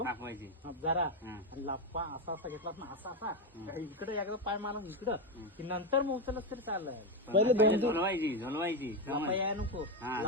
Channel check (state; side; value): normal; both; correlation 0.09